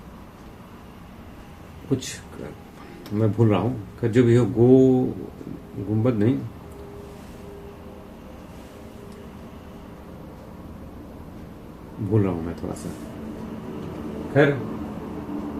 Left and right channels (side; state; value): both; identical; correlation 1.00